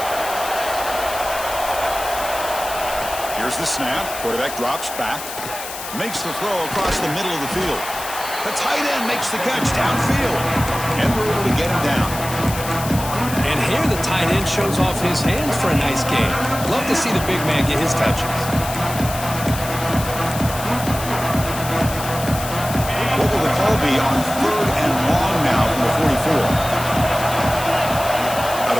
Here's the snap. Quarterback drops back. Makes the throw across the middle of the field. The tight end makes the catch downfield. And we're able to get him down. And here the tight end shows off his hands for a nice game. Love to see the big man get his touches. What will the call be on third and long now from the 44? Out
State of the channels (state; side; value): noise; left; hiss, 9 dB below the sound